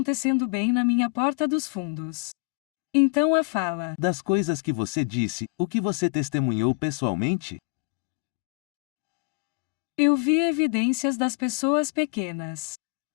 bem na minha porta dos fundos. Então a fala das coisas que você disse, o que você testemunhou pessoalmente? Eu vi evidências das pessoas pequenas.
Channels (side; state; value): right; quieter; 29.8 dB